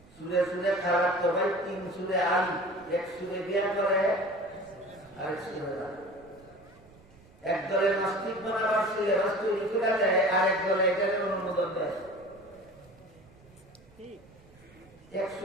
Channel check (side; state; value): right; noise; rumble, 26 dB below the sound